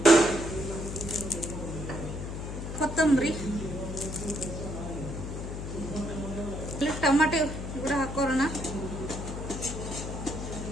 ಕೊತ್ತಂಬರಿ, ಟೊಮೆಟೊ ಕೂಡ ಹಾಕೋಣ.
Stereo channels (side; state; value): left; noise; hum, 6 dB below the sound